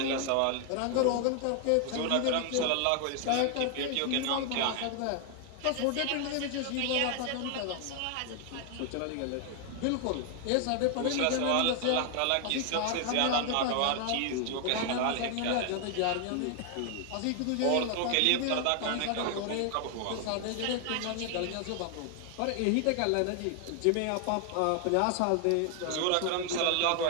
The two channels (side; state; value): both; different; correlation 0.00